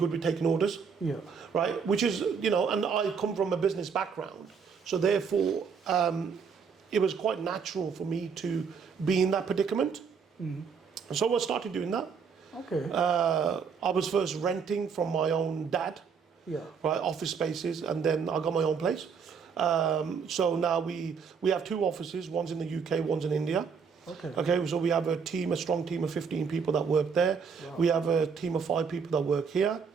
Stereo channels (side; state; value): left; quieter; 6.1 dB